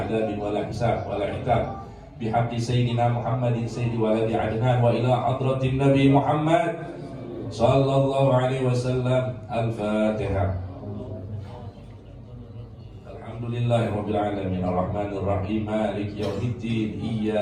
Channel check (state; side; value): identical; both; correlation 1.00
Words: wala hisab wala iqab bihaqqi sayyidina Muhammadin sayyidi waladi adnan wa ila hadratin nabi Muhammad sallallahu alaihi wasallam. Al-Fatihah. Alhamdulillahirabbil alamin arrahmanir rahim maliki yaumiddin